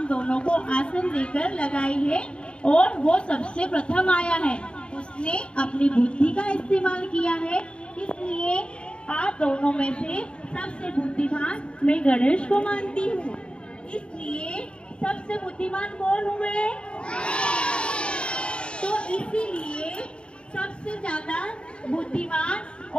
दोनों को आसन देकर लगाई है और वो सबसे प्रथम आया है। उसने अपनी बुद्धि का इस्तेमाल किया है, इसलिए आप दोनों में से सबसे बुद्धिमान मैं गणेश को मानती हूँ। इसलिए सबसे बुद्धिमान कौन हुए? तो इसीलिए सबसे ज्यादा बुद्धिमान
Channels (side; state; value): right; late; 0.054 ms